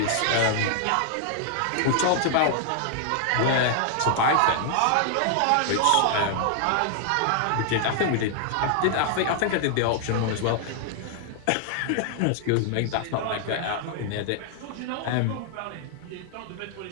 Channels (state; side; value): different; both; correlation 0.00